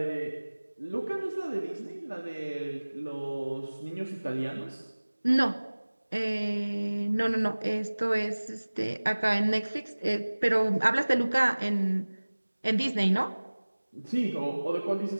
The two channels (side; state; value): both; inverted; correlation -1.00